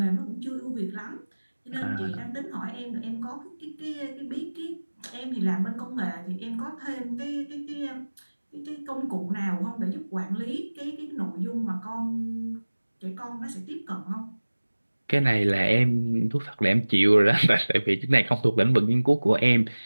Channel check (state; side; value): inverted; both; correlation -1.00